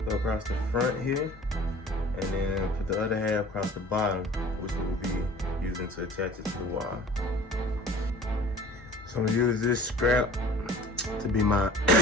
across the front here, and then put the other half across the bottom, which we will be using to attach it to the wall. So I'm going to use this scrap to be my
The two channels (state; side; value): normal; both; correlation 0.45